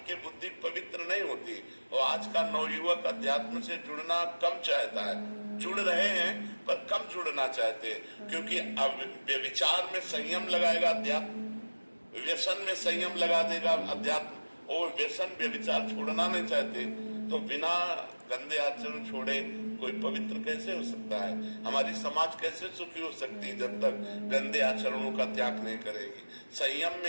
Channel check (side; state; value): both; inverted; correlation -1.00